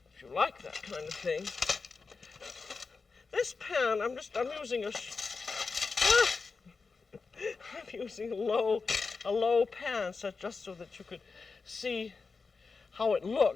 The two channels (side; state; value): right; quieter; 4.6 dB